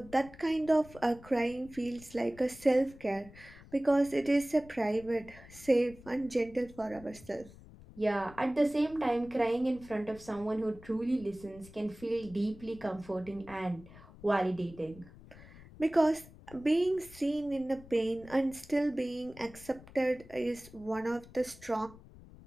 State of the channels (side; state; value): left; noise; rumble, 20 dB below the sound